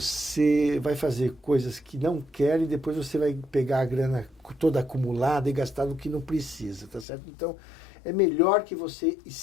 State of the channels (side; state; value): right; drops out; at 7.1 s